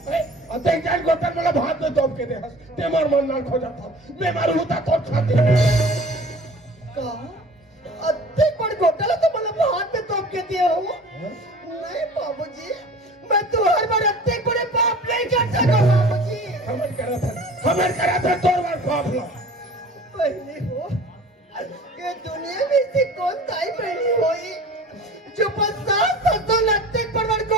अते जान गोतन वाला भात में तोप के दे हंस ते मार मन ना खो जाता मैं मारू होता तो छाती का अत्ते बड़ घोटाला तो मतलब हाथ में तोप के दिए हो नहीं बाबूजी मैं तो हर बार अत्ते बड़े पाप नहीं कर सकता बाबूजी हमें करा था तोर बार पाप लो पहले हो ये दुनिया में से कौन ताई बहनी हुई जो 50-60 लत्ते पर बड़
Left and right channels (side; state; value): both; normal; correlation 0.43